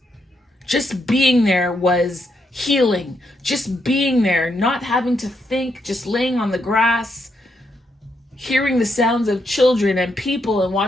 Just being there was healing. Just being there, not having to think, just laying on the grass, hearing the sounds of children and people and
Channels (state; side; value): normal; both; correlation 0.79